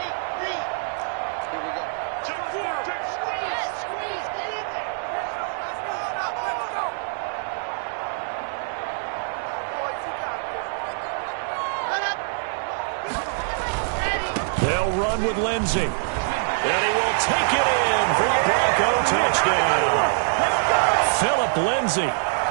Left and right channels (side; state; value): left; silent; digital silence